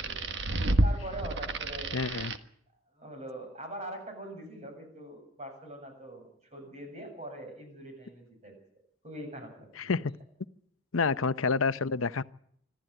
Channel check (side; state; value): both; normal; correlation 0.29